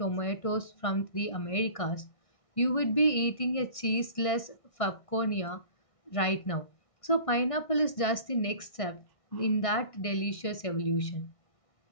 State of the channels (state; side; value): late; right; 1.6 ms